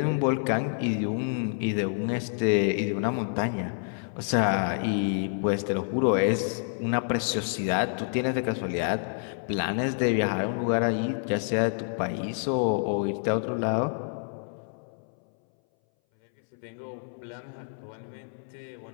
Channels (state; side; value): silent; right; 59 dB below the other